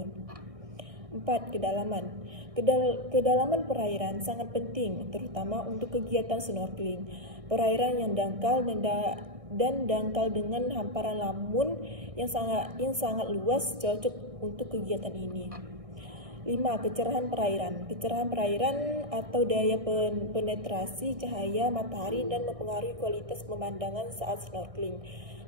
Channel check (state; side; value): late; left; 1.6 ms